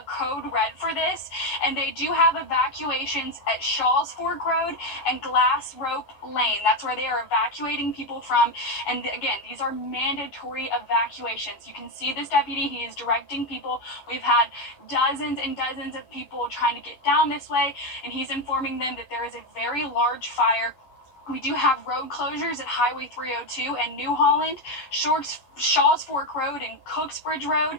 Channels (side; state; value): right; late; 11 ms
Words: code red for this, and they do have evacuation at Shaw's Fork Road and Glass Rope Lane. That's where they are evacuating people from. And again, these are mandatory evacuations. You can see this deputy, he is directing people. We've had dozens and dozens of people trying to get down this way, and he's informing them that there is a very large fire. We do have road closures at Highway 302 and New Holland, Shaw's Fork Road and Cooksbridge